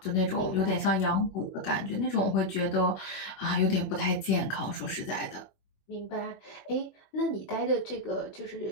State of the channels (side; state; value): right; late; 21 ms